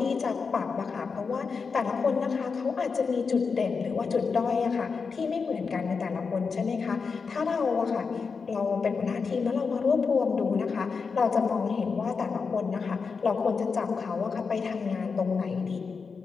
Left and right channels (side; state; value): right; quieter; 5.2 dB